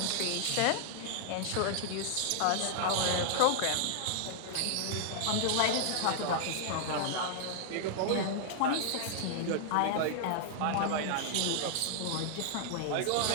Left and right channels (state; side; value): different; both; correlation -0.01